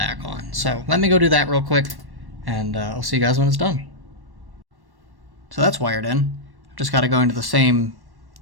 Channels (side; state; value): left; late; 1.1 ms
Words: on. So let me go do that real quick, and I'll see you guys when it's done. So that's wired in. I've just gotta go into the same